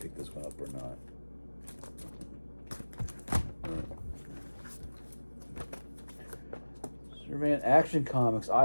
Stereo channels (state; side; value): inverted; both; correlation -1.00